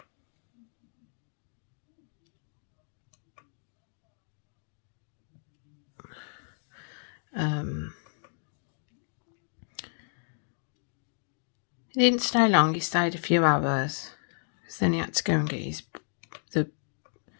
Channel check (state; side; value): silent; right; digital silence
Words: He didn't stay long, he stayed a few hours. Then he had to go and get